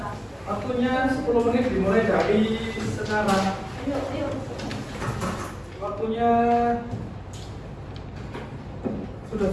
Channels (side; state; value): both; identical; correlation 1.00